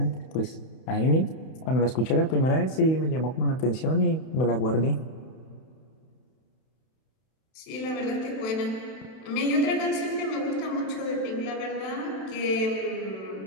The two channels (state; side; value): late; right; 31 ms